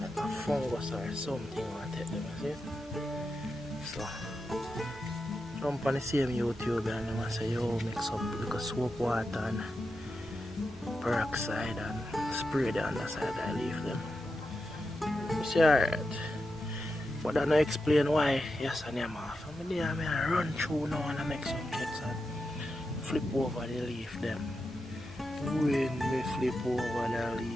like a fungus or something I take them, see? So jump on the same YouTube and them say yo mix up like a soap water and peroxide and spray the underside of the leaf them. You see alright. But I don't explain why yes and them off. I mean I run through now and I make some checks and flip over the leaf them. When we flip over the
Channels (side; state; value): both; normal; correlation 0.89